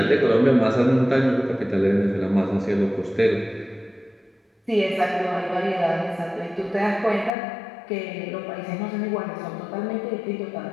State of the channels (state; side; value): drops out; right; at 7.3 s